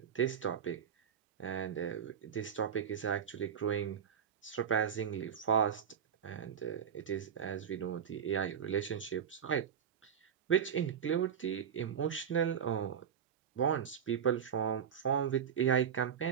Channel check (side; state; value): left; quieter; 8.2 dB